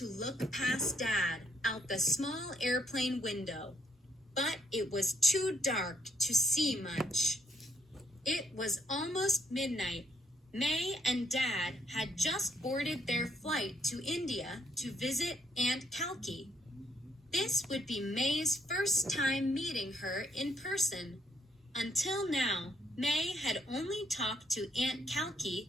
look past Dad out the small airplane window, but it was too dark to see much. It was almost midnight. May and Dad had just boarded their flight to India to visit Aunt Kalki. This would be May's first time meeting her in person. Until now, May had only talked to Aunt Kalki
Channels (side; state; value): both; normal; correlation 0.72